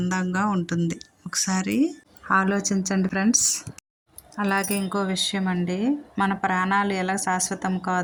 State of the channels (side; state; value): both; identical; correlation 1.00